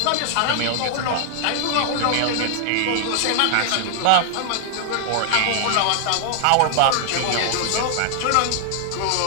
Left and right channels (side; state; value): both; different; correlation 0.00